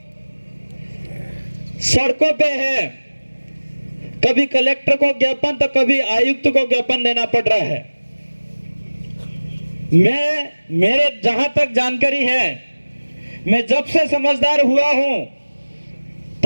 सड़कों पे हैं, कभी कलेक्टर को ज्ञापन तो कभी आयुक्त को ज्ञापन देना पड़ रहा है। मेरे जहां तक जानकारी है, मैं जब से समझदार हुआ हूं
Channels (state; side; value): inverted; both; correlation -1.00